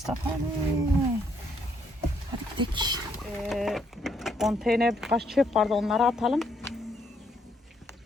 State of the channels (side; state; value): both; normal; correlation 0.72